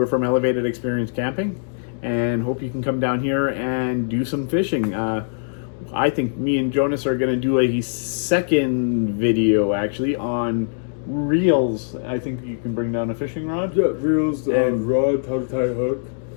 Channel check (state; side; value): silent; right; digital silence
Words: from Elevated Experience Camping, and hope you can come down here and do some fishing. I think me and Jonas are going to do a second video, actually, on reels. I think you can bring down a fishing rod. Yeah, reels, And- rod, how to tie a hook.